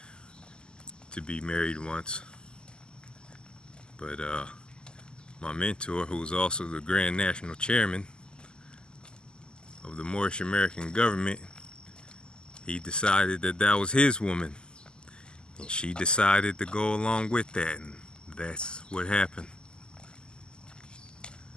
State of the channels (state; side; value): late; right; 0.047 ms